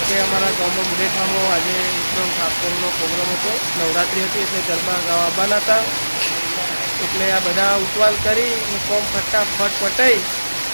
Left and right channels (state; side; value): inverted; both; correlation -1.00